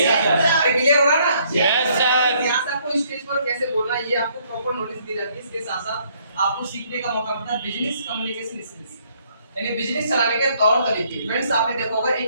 अरे क्लियर हो रहा है ना? Yes, sir. यहाँ से आपको स्टेज पर कैसे बोलना है ये आपको प्रॉपर नॉलेज दी जाती है। इसके साथ साथ आपको सीखने का मौका मिलता है बिजनेस कम्युनिकेशन स्किल्स, यानी बिजनेस चलाने के तौर तरीके। फ्रेंड्स आपने देखा होगा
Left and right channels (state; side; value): inverted; both; correlation -0.67